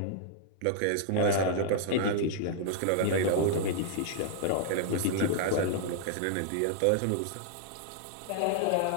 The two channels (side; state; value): both; different; correlation -0.01